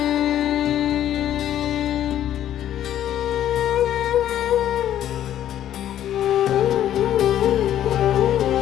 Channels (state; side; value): quieter; right; 11.5 dB